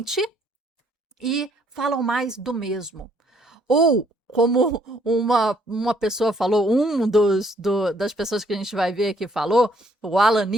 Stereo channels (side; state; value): both; normal; correlation 0.66